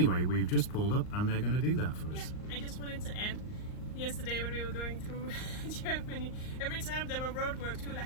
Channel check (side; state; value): right; late; 38 ms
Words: we've just pulled up and they're going to do that for Yeah, us. I just wanted to add, yesterday when we were going through Germany, every time there were roadworks, we were like,